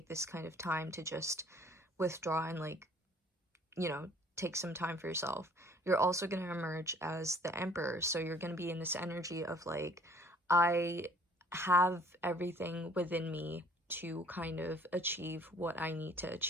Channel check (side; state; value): both; normal; correlation 0.55